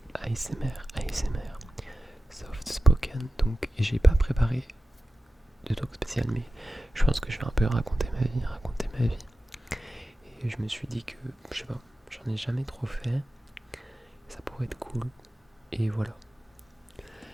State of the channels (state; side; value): normal; both; correlation 0.94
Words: ASMR, soft spoken. Donc j'ai pas préparé de talk spécial, mais je pense que je vais un peu raconter ma vie. Et je me suis dit que, je sais pas, j'en ai jamais trop fait, ça pourrait être cool, et voilà.